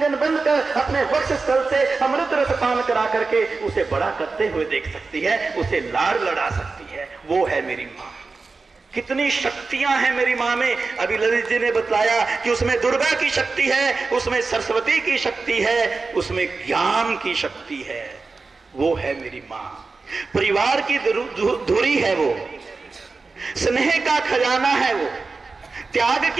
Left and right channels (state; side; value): quieter; left; 4.1 dB